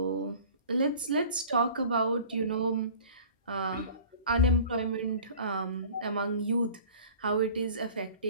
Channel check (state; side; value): inverted; both; correlation -0.44